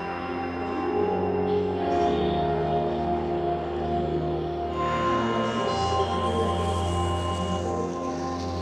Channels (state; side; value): identical; both; correlation 1.00